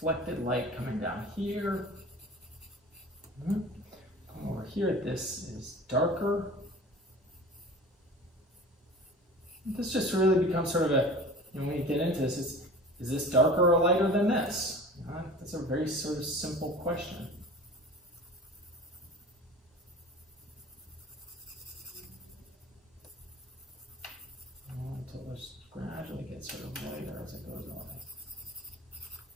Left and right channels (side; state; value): both; normal; correlation 0.40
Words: reflected light coming down here. Over here, this is darker. This just really becomes sort of a, when you get into this, is this darker or lighter than this? That's a very sort of simple question. Until it gradually gets sort of lighter as it goes on.